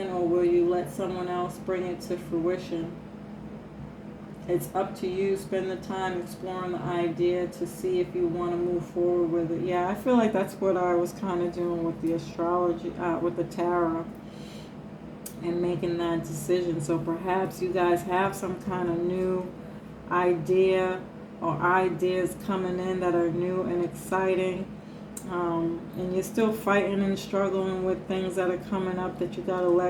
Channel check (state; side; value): identical; both; correlation 1.00